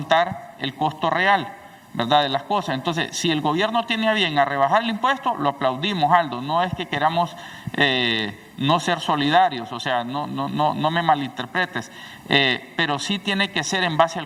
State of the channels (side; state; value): both; identical; correlation 1.00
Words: el costo real, ¿verdad?, de las cosas. Entonces, si el gobierno tiene a bien a rebajar el impuesto, lo aplaudimos, Aldo. No es que queramos no ser solidarios, o sea, no me malinterpretes, pero sí tiene que ser en base